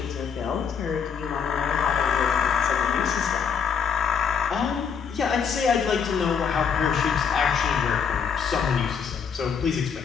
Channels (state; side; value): quieter; right; 6.8 dB